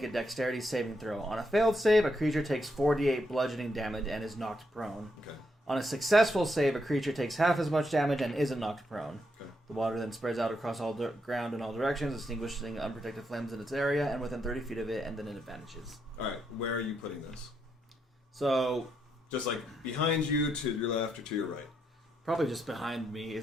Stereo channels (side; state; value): both; normal; correlation 0.79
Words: a dexterity saving throw. On a failed save, a creature takes 4d8 bludgeoning damage and is knocked prone. Okay. On a successful save, a creature takes half as much damage and isn't knocked prone. Okay. The water then spreads out across all ground in all directions, extinguishing unprotected flames in its area and within 30 feet of it, and then it vanishes. All right. Where are you putting this? So, Just like behind you, to your left, or to your right? probably just behind me,